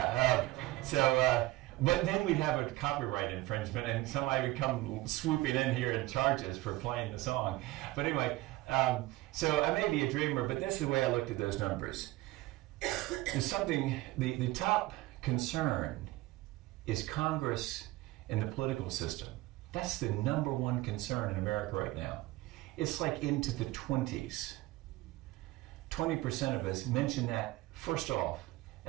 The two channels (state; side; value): quieter; left; 18.9 dB